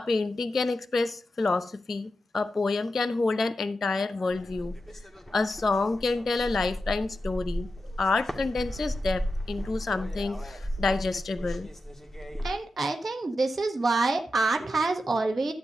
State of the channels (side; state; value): both; normal; correlation 0.90